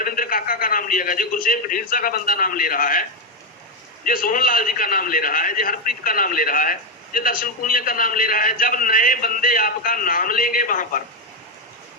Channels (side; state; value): both; normal; correlation 0.06